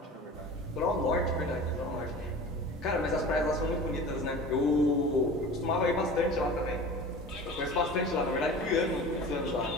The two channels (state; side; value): normal; both; correlation 0.37